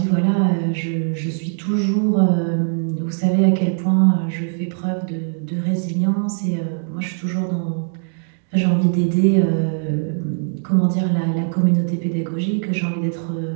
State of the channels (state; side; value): silent; left; 65 dB below the other